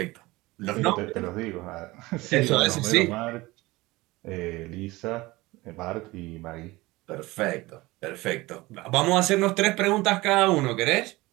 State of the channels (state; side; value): quieter; left; 20.7 dB